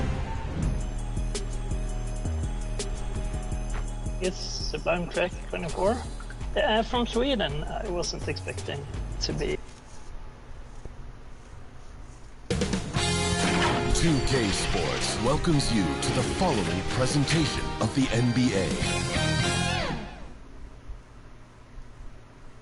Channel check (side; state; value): both; identical; correlation 1.00